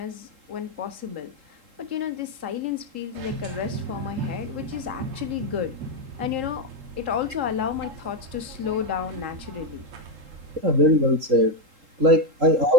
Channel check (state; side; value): late; left; 3.8 ms